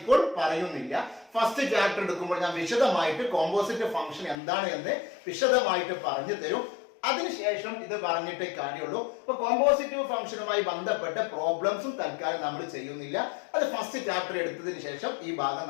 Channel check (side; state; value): right; drops out; at 4.4 s